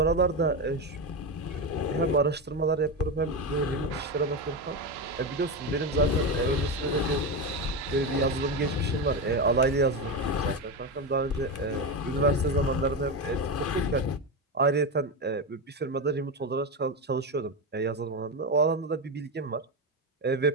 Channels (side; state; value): both; normal; correlation 0.14